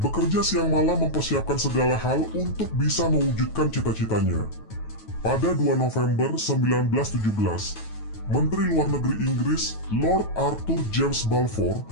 siang malam mempersiapkan segala hal untuk bisa mewujudkan cita-citanya. Pada 2 November 1917, Menteri Luar Negeri Inggris Lord Arthur James Balfour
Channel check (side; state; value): right; late; 9.3 ms